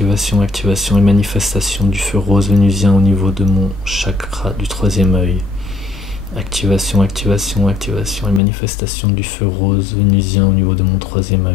activation et manifestation du feu rose vénusien au niveau de mon chakra du troisième œil. Activation, activation, activation et manifestation du feu rose vénusien au niveau de mon troisième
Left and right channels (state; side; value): drops out; right; at 8.4 s